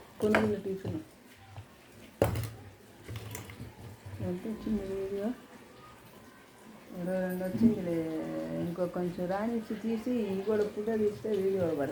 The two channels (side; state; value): both; identical; correlation 1.00